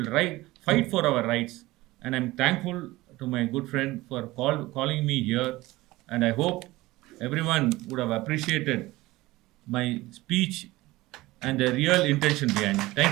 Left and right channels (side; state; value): left; quieter; 19.0 dB